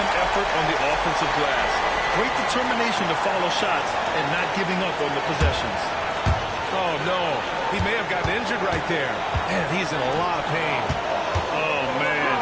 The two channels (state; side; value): identical; both; correlation 1.00